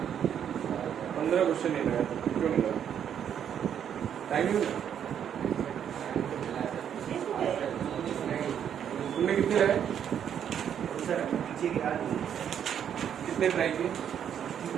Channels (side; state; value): left; quieter; 8.9 dB